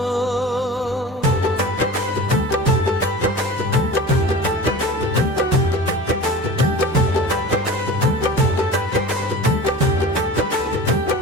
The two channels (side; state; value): both; normal; correlation 0.36